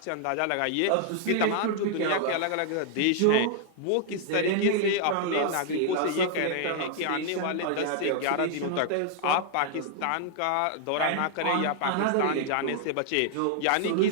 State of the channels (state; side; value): different; both; correlation 0.00